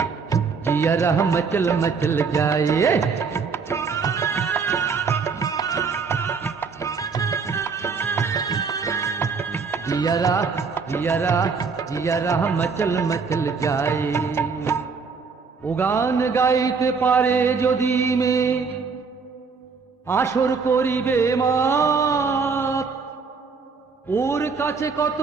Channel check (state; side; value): quieter; left; 5.2 dB